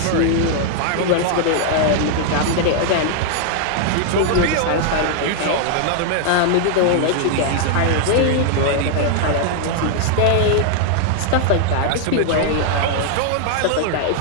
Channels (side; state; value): both; different; correlation 0.00